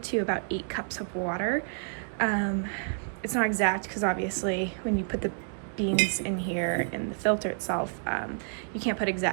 about 8 cups of water. It's not exact because obviously when you put the beans in here in the filter itself, you can't put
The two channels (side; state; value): left; silent; digital silence